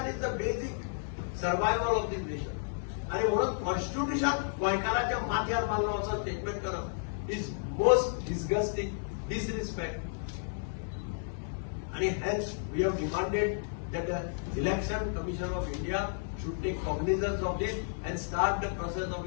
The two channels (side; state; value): right; silent; 56 dB below the other